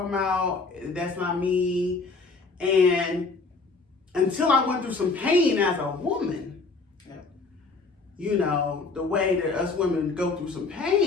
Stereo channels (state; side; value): quieter; right; 4.0 dB